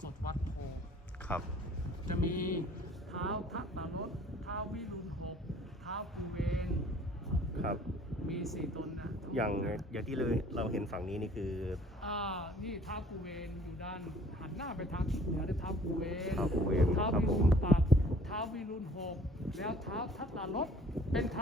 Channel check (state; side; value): normal; both; correlation 0.54